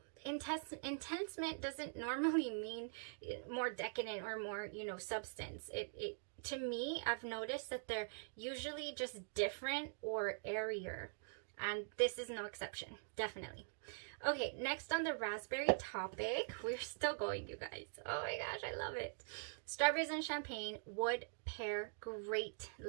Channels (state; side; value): silent; left; digital silence